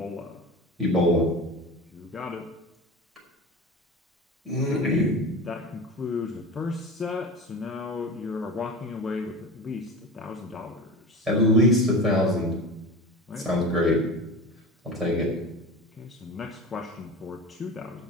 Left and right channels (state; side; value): normal; both; correlation 0.31